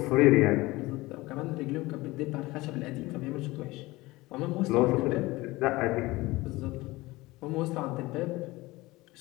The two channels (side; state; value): right; quieter; 20.5 dB